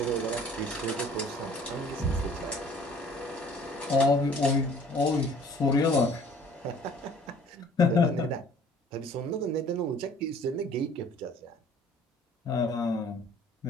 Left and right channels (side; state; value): both; normal; correlation 0.53